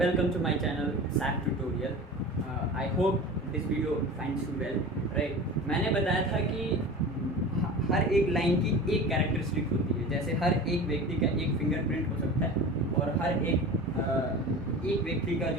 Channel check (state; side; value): normal; both; correlation 0.34